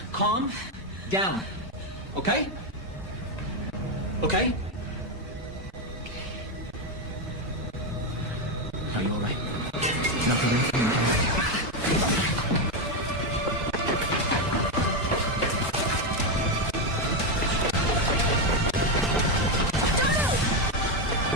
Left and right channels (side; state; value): both; normal; correlation 0.08